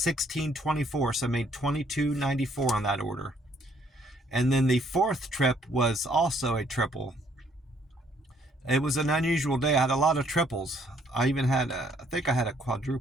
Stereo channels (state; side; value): normal; both; correlation 0.65